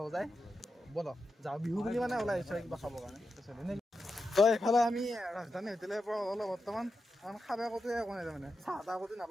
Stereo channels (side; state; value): both; normal; correlation 0.88